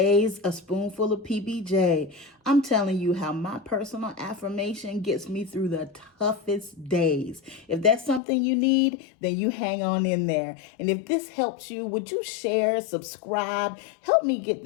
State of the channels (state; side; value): drops out; right; at 8.2 s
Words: A Spoonful of PBJ, I'm telling you how my personal affirmation gets me through the toughest days. If that's something you need, then you hang on in there. And if this helps you, would you share, subscribe, help me get